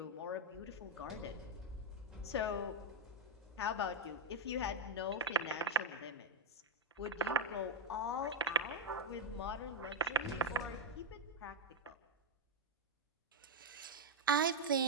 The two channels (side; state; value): both; normal; correlation 0.03